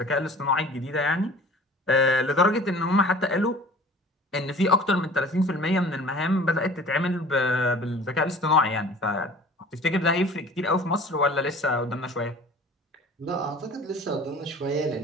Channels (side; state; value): both; normal; correlation 0.45